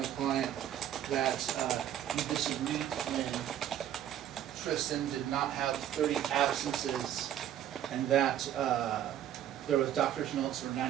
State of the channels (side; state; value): left; quieter; 11.0 dB